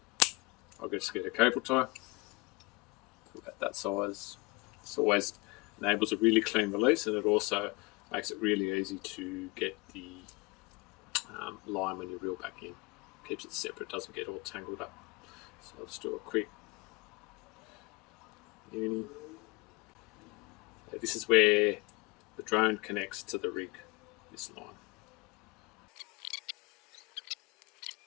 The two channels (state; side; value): quieter; right; 25.2 dB